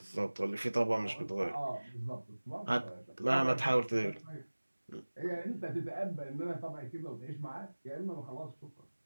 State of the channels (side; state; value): both; inverted; correlation -1.00